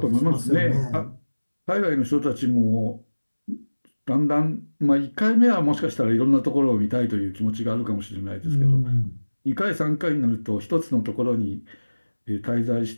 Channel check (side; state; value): both; inverted; correlation -1.00